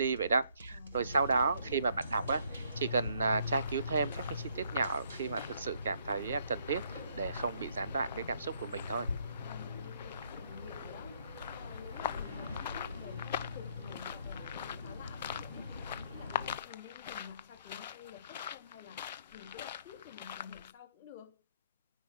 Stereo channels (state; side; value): inverted; both; correlation -0.69